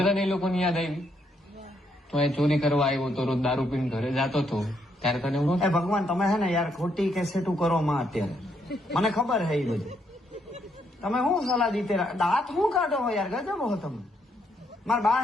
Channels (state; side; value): normal; both; correlation 0.75